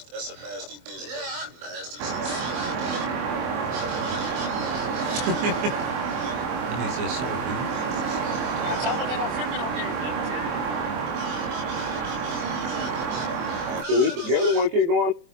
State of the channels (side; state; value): left; late; 24 ms